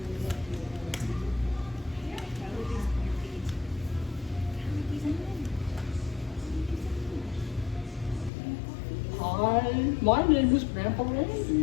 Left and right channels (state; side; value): drops out; right; at 8.3 s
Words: Hi, my name is Grandpa